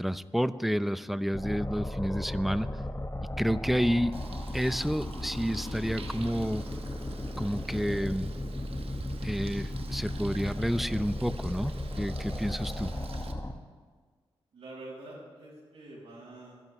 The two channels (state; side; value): normal; both; correlation 0.97